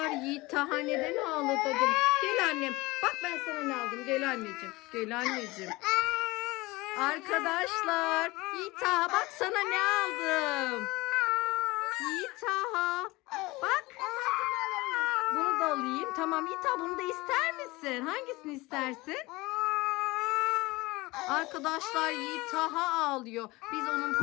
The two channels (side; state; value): right; quieter; 21.8 dB